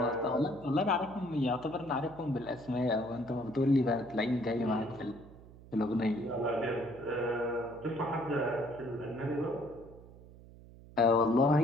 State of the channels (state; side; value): noise; right; hum, 20 dB below the sound